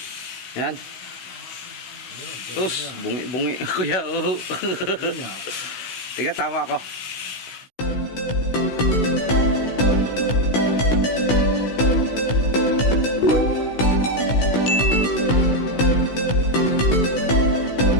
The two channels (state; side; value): late; right; 16 ms